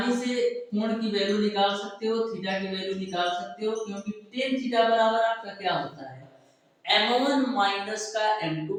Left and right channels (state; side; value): identical; both; correlation 1.00